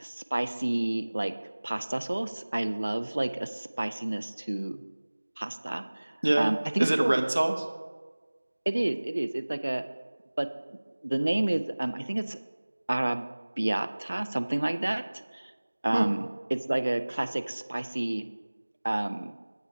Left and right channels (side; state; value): both; inverted; correlation -1.00